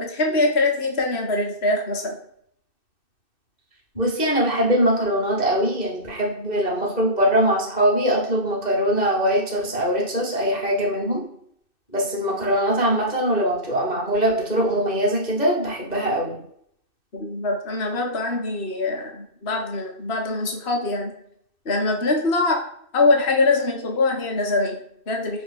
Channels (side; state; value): right; late; 2.6 ms